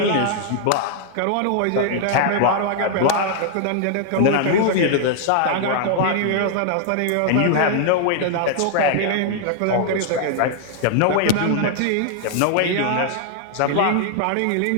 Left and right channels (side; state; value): both; different; correlation -0.01